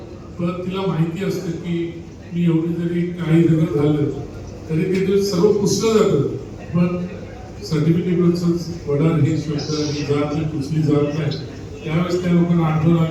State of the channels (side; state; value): both; identical; correlation 1.00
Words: पण तिला माहिती असतं की मी एवढी जरी काही जरी झालं तरी ते सर्व पुसलं जातं, पण सर्टिफिकेटवरच वडार हे शब्द ही जात ही पुसली जात नाही. त्यावेळेस त्या लोकांना आठवण